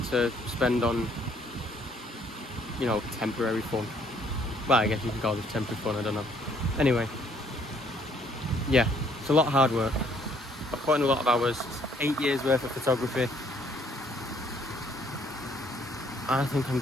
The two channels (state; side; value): normal; both; correlation 0.64